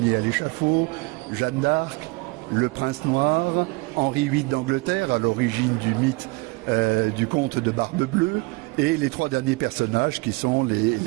Ier à l'échafaud, Jeanne d'Arc, le prince noir, Henri VIII d'Angleterre, à l'origine du mythe du comte de Barbe Bleue, et les 3 derniers personnages qui sont les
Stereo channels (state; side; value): quieter; left; 25.9 dB